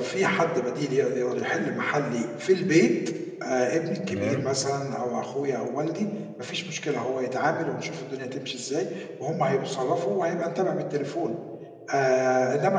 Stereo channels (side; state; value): both; identical; correlation 1.00